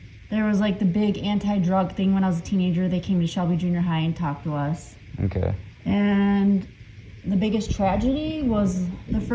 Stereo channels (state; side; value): identical; both; correlation 1.00